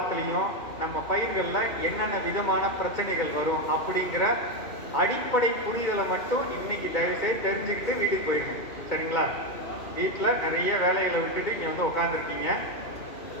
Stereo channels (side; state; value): right; late; 2.2 ms